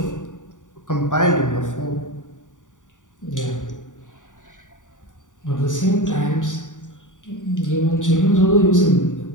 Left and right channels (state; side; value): late; right; 0.87 ms